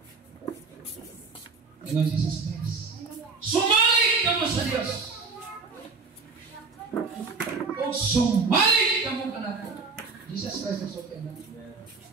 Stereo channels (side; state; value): left; quieter; 4.4 dB